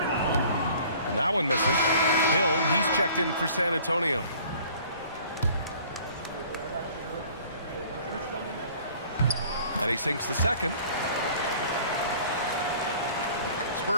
And that one misses. Hill, he's checked in for San Antonio. And he sinks the second.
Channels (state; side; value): inverted; both; correlation -0.51